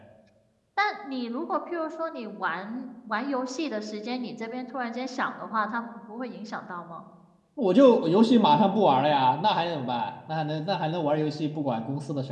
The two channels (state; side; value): identical; both; correlation 1.00